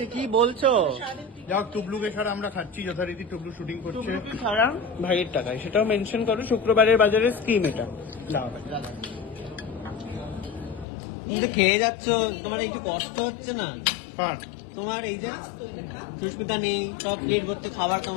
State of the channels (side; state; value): right; drops out; at 10.9 s